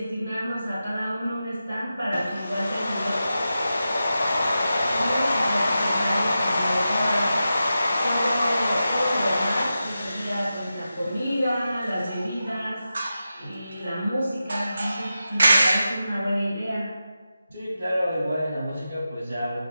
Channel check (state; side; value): inverted; both; correlation -0.91